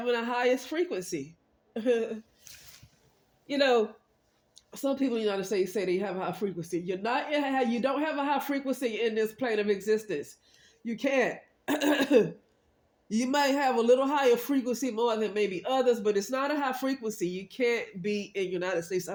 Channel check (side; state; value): both; identical; correlation 1.00